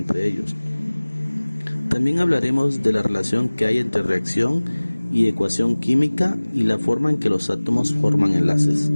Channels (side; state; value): both; inverted; correlation -1.00